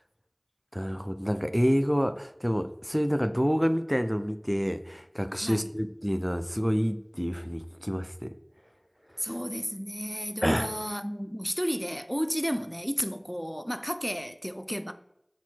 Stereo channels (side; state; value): both; identical; correlation 1.00